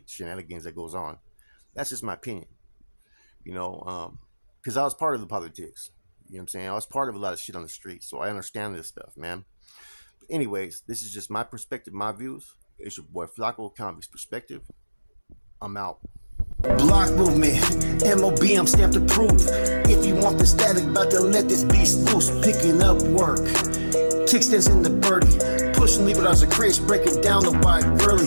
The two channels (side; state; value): both; inverted; correlation -1.00